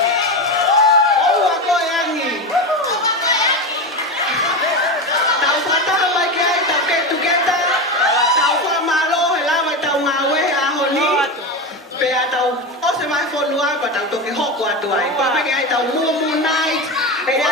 Tao tôi cái hộp của tuổi qua mấy cái tao mua night cái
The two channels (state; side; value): normal; both; correlation 0.19